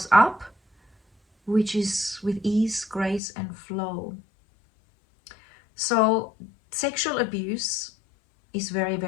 up, which is with ease, grace and flow. So sexual abuse is very,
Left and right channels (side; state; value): right; drops out; at 3.2 s